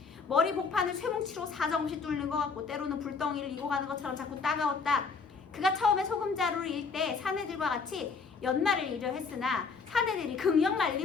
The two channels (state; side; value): quieter; right; 4.9 dB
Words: 머리 복판을 쇠뭉치로 사정없이 뚫는 것 같고 때로는 불덩이를 이고 가는 것처럼 자꾸 따가웠다. 그가 처음에 소금자루를 일 때 사내들과 같이 연말을 이려 했으나 사내들이 극력